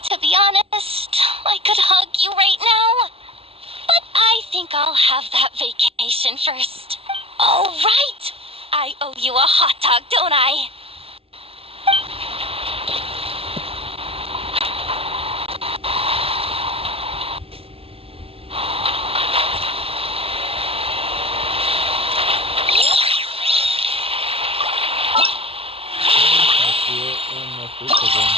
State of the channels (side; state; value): left; late; 0.27 ms